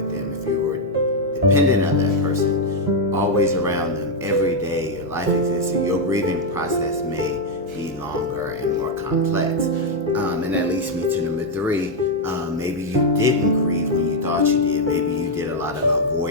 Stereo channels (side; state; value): both; normal; correlation 0.00